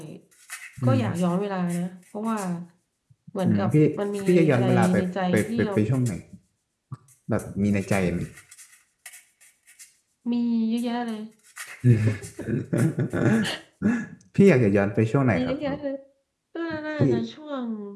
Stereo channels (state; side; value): identical; both; correlation 1.00